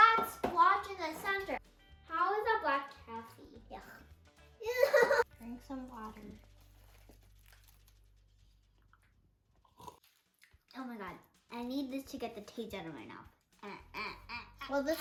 splotch in the center. How is that black taffy? Yuck. Drink some water. Oh my god. I need this to get the taste out of my mouth. Well, this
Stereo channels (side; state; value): both; identical; correlation 1.00